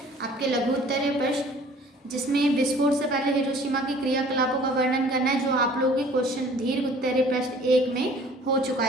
आपके लघु उत्तरीय प्रश्न, जिसमें विस्फोट से पहले हिरोशिमा की क्रियाकलापों का वर्णन करना है, जो आप लोगों के क्वेश्चन दीर्घ उत्तरीय प्रश्न 1 में हो चुका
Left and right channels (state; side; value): normal; both; correlation 0.51